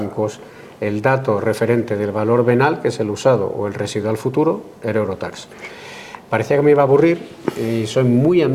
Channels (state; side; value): identical; both; correlation 1.00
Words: El dato referente del valor venal, que es el usado o el residual futuro, era Eurotax. Parecía que me iba a aburrir y soy muy